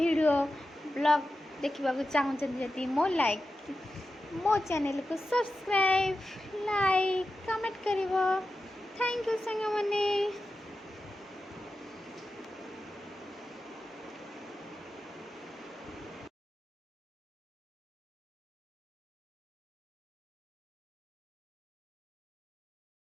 ब्लॉग देखा चाहते मो लाइक मो चैनल को सब्सक्राइब लाइक कमेंट कर। थैंक यू सांग मैंने।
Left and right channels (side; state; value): both; normal; correlation 0.91